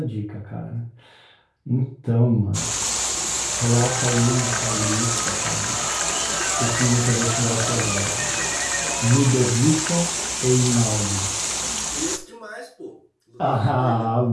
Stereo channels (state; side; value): identical; both; correlation 1.00